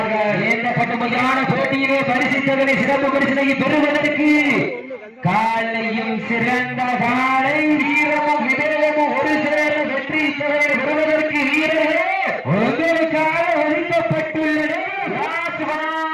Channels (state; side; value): identical; both; correlation 1.00